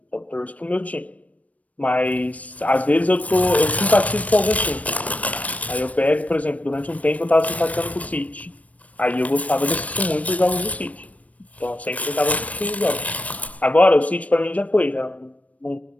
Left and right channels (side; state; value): right; late; 0.068 ms